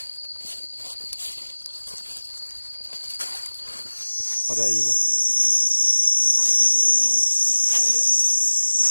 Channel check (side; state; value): both; inverted; correlation -1.00